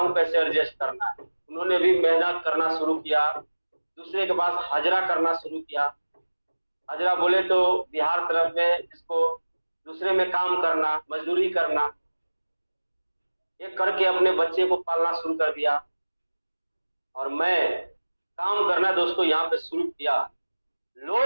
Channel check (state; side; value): inverted; both; correlation -1.00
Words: कैसे एडजस्ट करना है। उन्होंने भी मेहनत करना शुरू किया, दूसरे के पास हाजरा करना शुरू किया। हाजरा बोले तो बिहार तरफ में जिसको दूसरे में काम करना, मजदूरी करना, ये करके अपने बच्चे को पालना शुरू कर दिया। और मैं काम करना दोस्तों यहाँ पे शुरू किया।